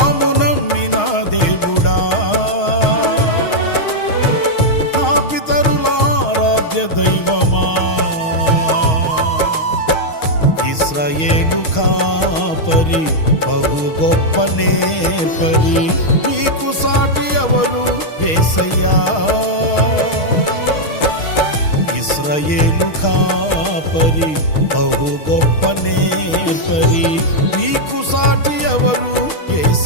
నమ్మిన దేవుడా, నా పితరుల ఆరాధ్య దైవమా. ఇశ్రాయేలు కాపరి బహు గొప్ప నేర్పరి, నీకు సాటి ఎవరు యేసయ్యా. ఇశ్రాయేలు కాపరి బహు గొప్ప నేర్పరి, నీకు సాటి ఎవరు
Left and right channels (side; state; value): right; late; 6.4 ms